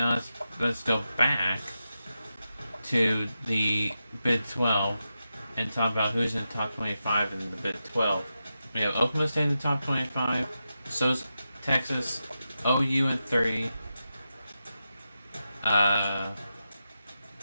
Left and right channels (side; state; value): both; inverted; correlation -0.89